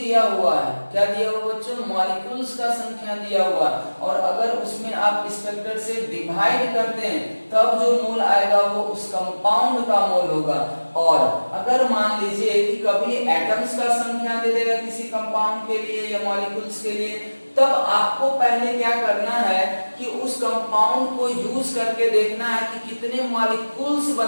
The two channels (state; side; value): inverted; both; correlation -1.00